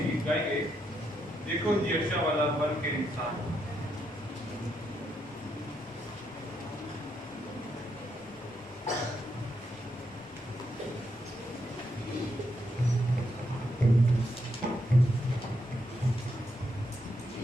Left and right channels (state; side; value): normal; both; correlation 0.79